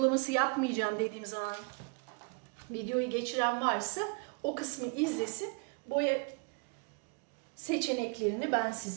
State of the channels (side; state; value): left; quieter; 34.6 dB